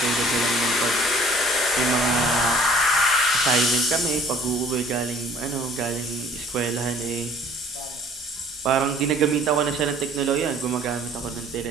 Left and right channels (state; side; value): normal; both; correlation 0.54